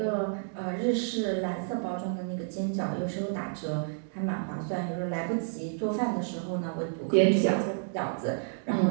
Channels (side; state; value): left; silent; digital silence